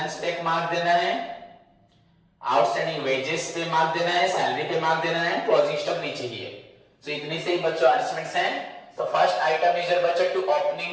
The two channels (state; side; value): identical; both; correlation 1.00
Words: पे मार्क देना है, आउटस्टैंडिंग वेजेस पे मार्क देना है, सैलरी पे मार्क देना है, क्लोजिंग स्टॉक नीचे ही है। तो इतनी से ही बच्चों एडजस्टमेंट्स हैं। तो फर्स्ट आइटम इज बच्चों to